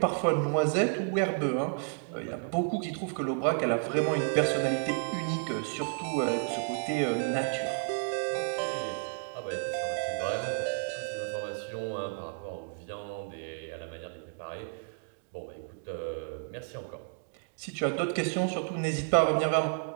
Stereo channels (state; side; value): silent; left; 57 dB below the other